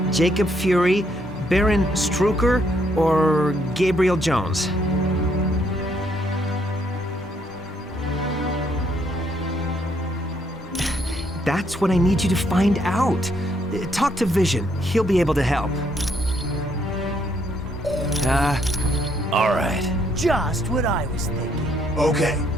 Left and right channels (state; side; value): normal; both; correlation 0.71